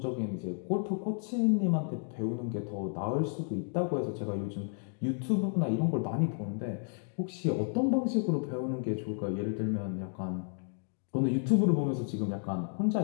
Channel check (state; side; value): silent; right; 56 dB below the other